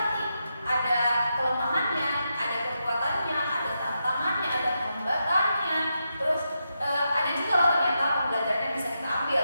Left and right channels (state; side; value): inverted; both; correlation -0.85